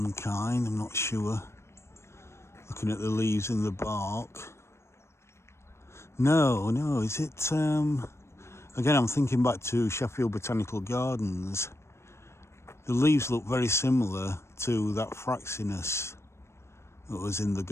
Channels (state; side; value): late; right; 0.13 ms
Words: kind, I'm not sure. Looking at the leaves and the bark. No, is it... Again, I'm thinking back to Sheffield Botanical Gardens. The leaves look very similar to that Fraxinus that was in the